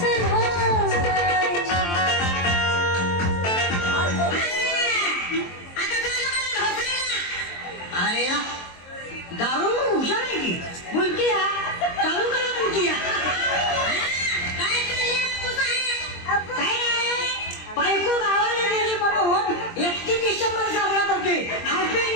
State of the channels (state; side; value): late; right; 23 ms